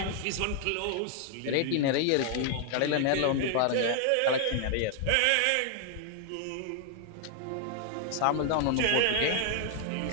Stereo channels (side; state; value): both; different; correlation 0.00